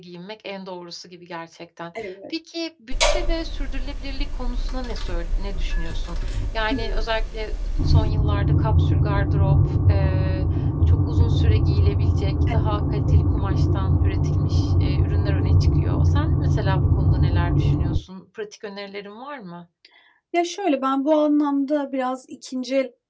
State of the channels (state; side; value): identical; both; correlation 1.00